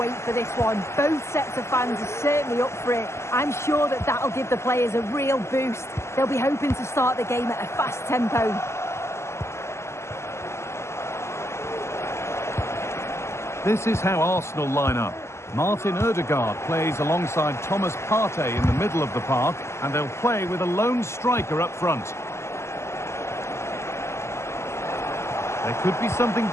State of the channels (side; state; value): right; late; 0.13 ms